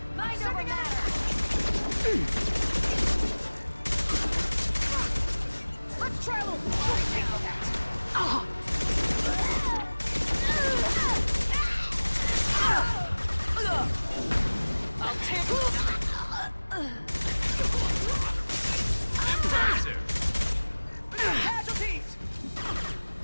Mind over matter! Let's try a little I'll take casualties!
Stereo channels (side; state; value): both; inverted; correlation -1.00